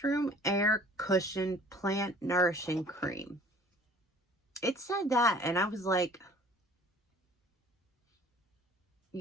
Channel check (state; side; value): normal; both; correlation 0.51